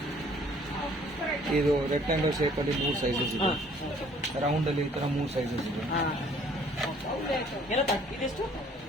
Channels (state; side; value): normal; both; correlation 0.58